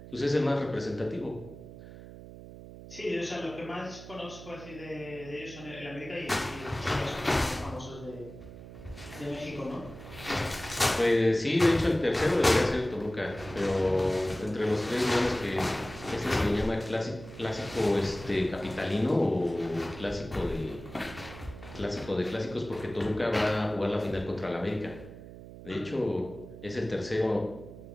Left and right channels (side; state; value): right; noise; hum, 15 dB below the sound